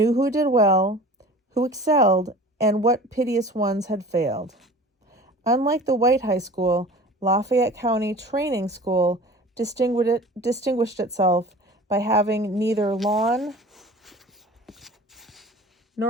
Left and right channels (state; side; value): normal; both; correlation 0.41